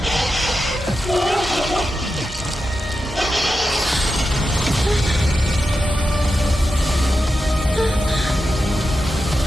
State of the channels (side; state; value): both; normal; correlation 0.89